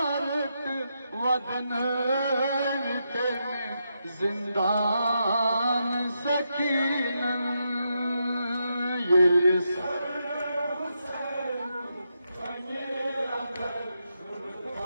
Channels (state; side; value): inverted; both; correlation -0.83